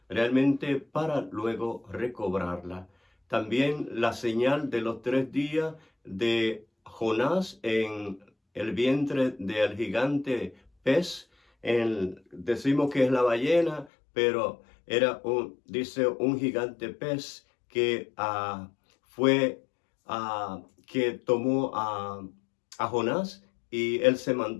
realmente para luego recobrarla. También la señal de los 3 días de Jonás en el vientre del gigante pez, decimos que es la ballena, pero era dice, un gigante pez que que tomó a Jonás, y él se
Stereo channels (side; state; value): right; drops out; at 13.9 s